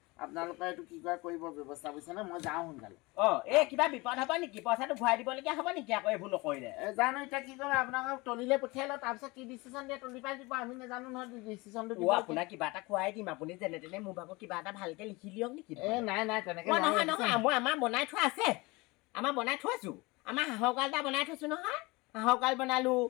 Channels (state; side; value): quieter; right; 24.0 dB